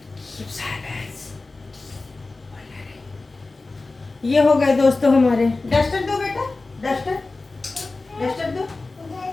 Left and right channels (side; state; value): right; quieter; 3.4 dB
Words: ये हो गए दोस्तों हमारे। डस्टर दो बेटा, डस्टर डस्टर दो।